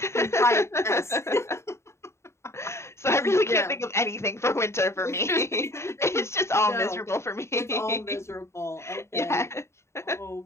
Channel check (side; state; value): right; late; 0.13 ms